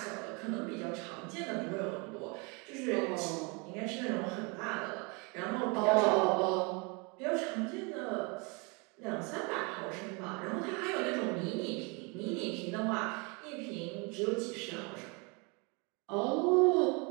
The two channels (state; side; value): quieter; left; 31.0 dB